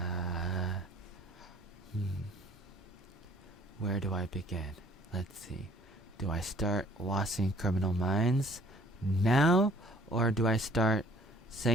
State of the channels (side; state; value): both; normal; correlation 0.57